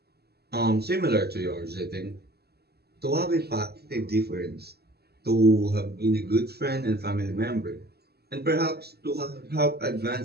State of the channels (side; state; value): left; late; 0.47 ms